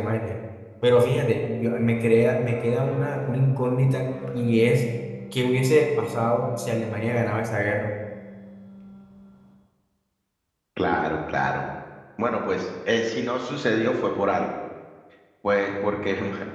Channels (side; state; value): both; identical; correlation 1.00